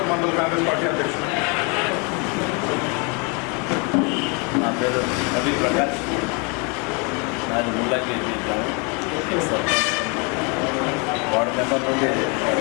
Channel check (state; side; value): quieter; right; 32.8 dB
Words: mandal Congress party అధ్యక్షుడు. నా పేరు రవి ప్రకాష్, నాది ముల్లాకి వార్డు మెంబర్ నుండి